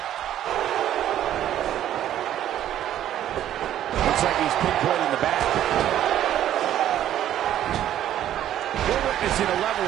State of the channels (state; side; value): quieter; left; 11.7 dB